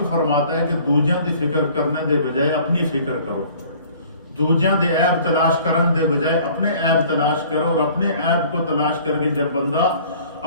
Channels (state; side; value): inverted; both; correlation -0.52